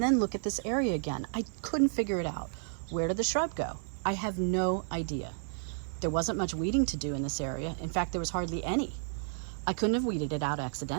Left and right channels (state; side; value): silent; left; 57 dB below the other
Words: then look at this area again. I couldn't figure it out. Where did the shrub go? I have no idea. There wasn't much weeding to do in this area. In fact, there was hardly any. I couldn't have weeded it out